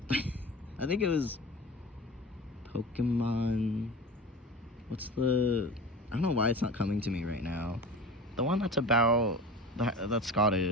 I think it was Pokemon. What's the? I don't know why it's not coming to me right now. The one that's about that's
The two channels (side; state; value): both; normal; correlation 0.34